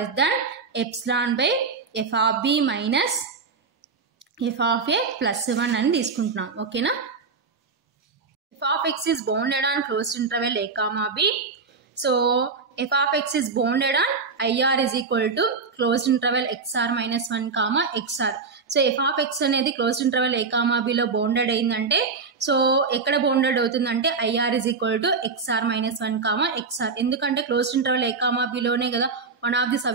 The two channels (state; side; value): quieter; left; 4.7 dB